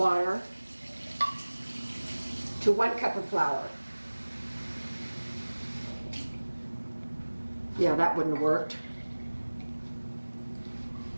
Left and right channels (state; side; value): inverted; both; correlation -1.00